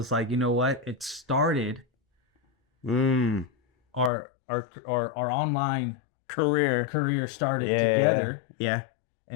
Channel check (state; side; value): drops out; right; at 4.1 s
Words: like, you know what? It started. Our online career started together. Yeah.